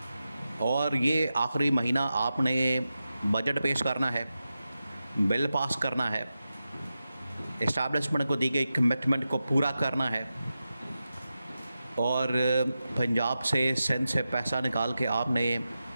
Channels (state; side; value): inverted; both; correlation -0.92